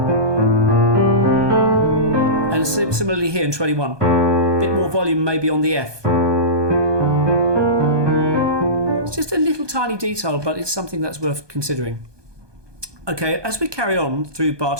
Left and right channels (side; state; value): left; late; 1.2 ms